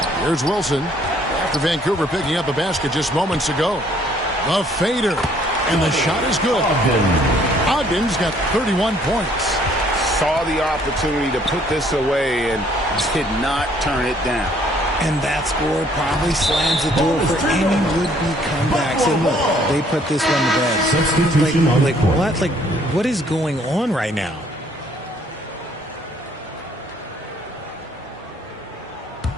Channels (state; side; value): normal; both; correlation 0.62